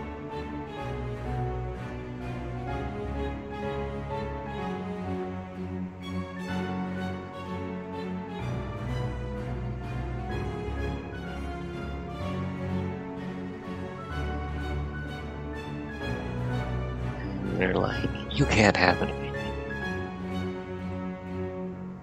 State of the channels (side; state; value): both; identical; correlation 1.00